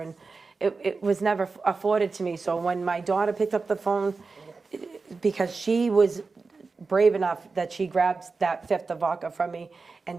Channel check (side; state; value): left; quieter; 4.2 dB